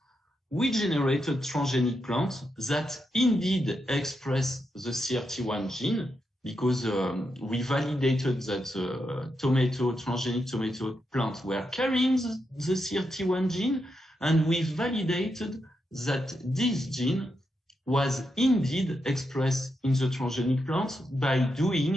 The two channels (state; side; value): normal; both; correlation 0.84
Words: We generated transgenic plants that indeed express the CRT1 gene because we validated that the transgenic tomato plant were carrying the CRT1 gene, and we validated that this gene was indeed expressed in the transgenic plant by